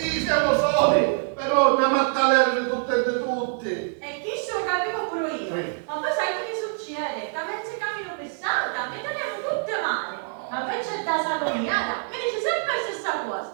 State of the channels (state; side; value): silent; left; digital silence